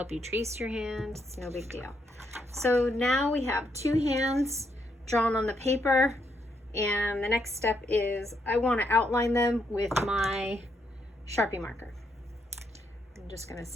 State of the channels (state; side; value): normal; both; correlation 0.77